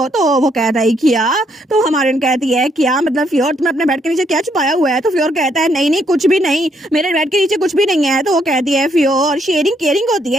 तो वो कहता है क्या, तो हमारे कहती है क्या मतलब फ्योर तुमने अपने बेड के नीचे क्या छुपाया हुआ है। तो फ्योर कहता है नहीं नहीं कुछ भी नहीं, मेरे बेड के नीचे कुछ भी नहीं है। तो वो कहती है फ्योर शेयरिंग केयरिंग होती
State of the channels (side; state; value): both; normal; correlation 0.72